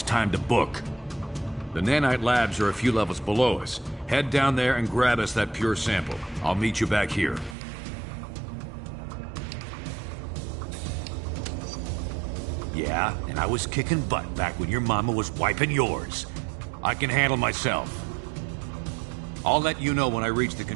time to book. The nanite labs are a few levels below us. Head down there and grab us that pure sample. I'll meet you back here. Yeah, and I was kicking butt back when your mama was wiping yours. I can handle myself. I'll let you know when I reach the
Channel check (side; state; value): left; drops out; at 7.6 s